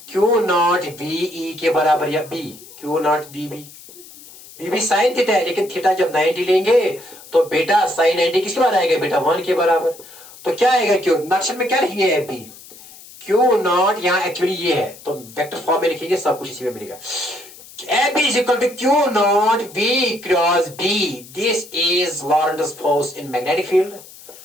क्यू नॉट वी ई के बराबर, या बी क्यू नॉट बी भी साइन थीटा है, लेकिन थीटा जब 90 लेंगे तो बेटा साइन 90 किसके बराबर आएगा बेटा? 1 के बराबर। तो क्या आएगा? क्यू नक्शे में क्या लिखेंगे? एफ बी क्यू नॉट, यहाँ एक्चुअली ये है तो वेक्टर फॉर्म में लिखेंगे, सब कुछ इसी में मिलेगा। F B is equal to q not v cross B. This is Lorentz force in magnetic field.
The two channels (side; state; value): left; noise; hiss, 19 dB below the sound